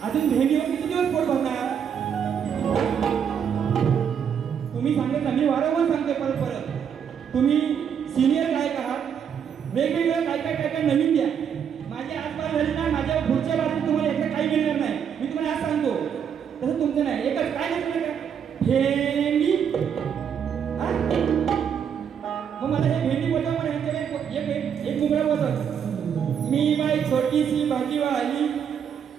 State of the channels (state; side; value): quieter; left; 7.9 dB